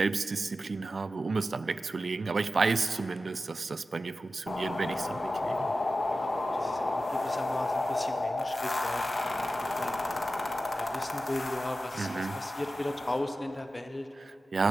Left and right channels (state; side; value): normal; both; correlation 0.93